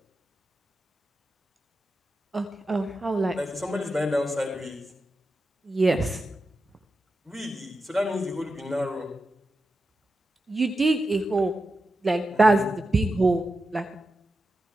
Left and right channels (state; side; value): normal; both; correlation 0.90